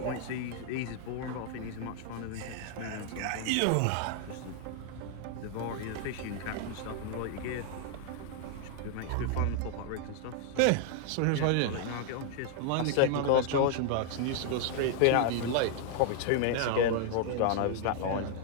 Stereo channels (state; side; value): different; both; correlation 0.00